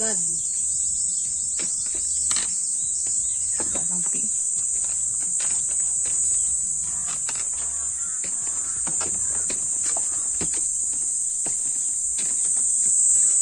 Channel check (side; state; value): both; identical; correlation 1.00